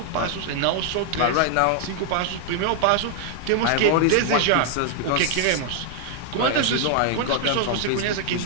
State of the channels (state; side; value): different; both; correlation 0.00